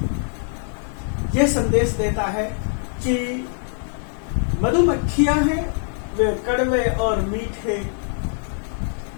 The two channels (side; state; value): right; silent; 56 dB below the other